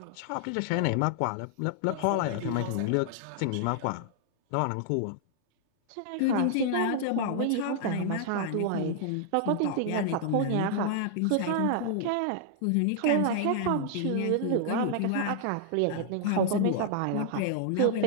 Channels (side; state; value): both; different; correlation -0.01